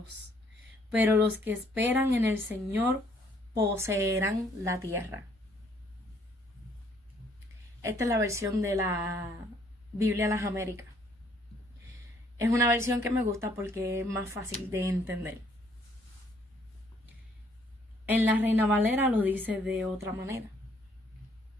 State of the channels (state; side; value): normal; both; correlation 0.65